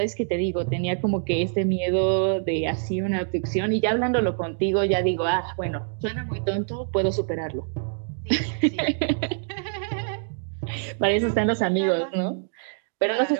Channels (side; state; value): left; silent; digital silence